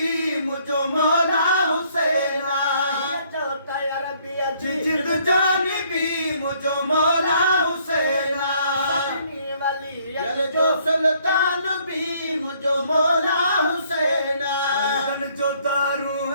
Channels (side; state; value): both; inverted; correlation -0.65